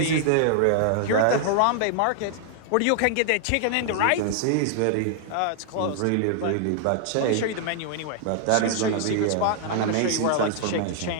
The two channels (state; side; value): different; both; correlation 0.00